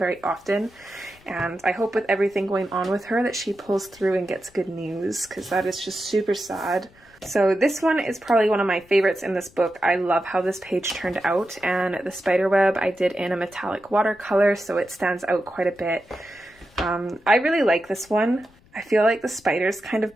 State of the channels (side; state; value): left; noise; rumble, 29 dB below the sound